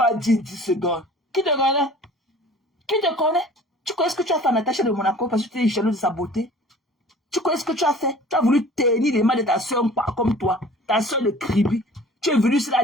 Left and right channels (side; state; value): both; normal; correlation 0.47